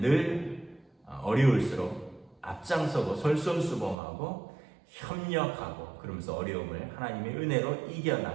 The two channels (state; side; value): drops out; left; at 4.0 s